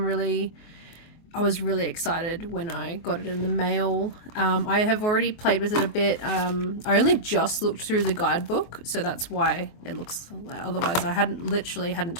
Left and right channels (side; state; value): right; late; 24 ms